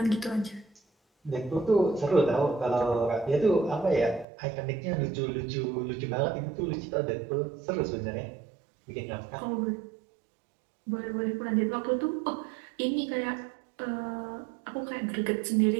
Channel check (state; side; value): drops out; left; at 4.2 s